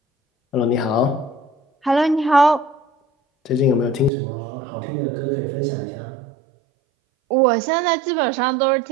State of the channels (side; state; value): left; drops out; at 4.1 s